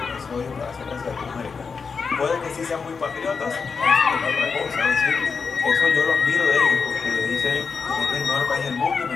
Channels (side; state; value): right; quieter; 5.3 dB